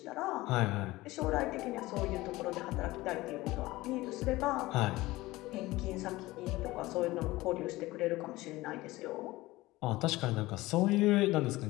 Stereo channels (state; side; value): quieter; right; 19.0 dB